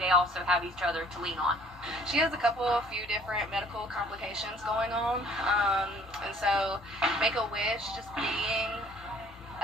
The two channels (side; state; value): both; normal; correlation 0.56